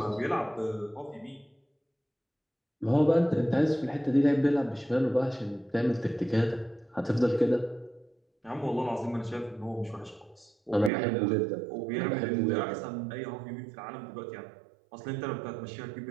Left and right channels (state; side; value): drops out; left; at 10.9 s